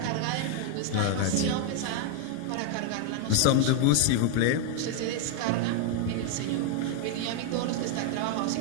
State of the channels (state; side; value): different; both; correlation 0.00